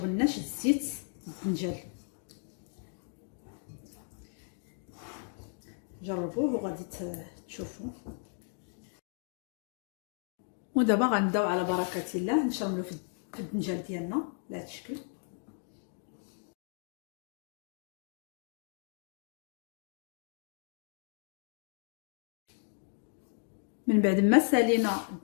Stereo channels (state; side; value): silent; right; 54 dB below the other